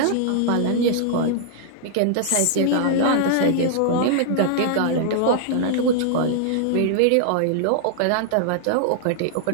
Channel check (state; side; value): different; both; correlation -0.01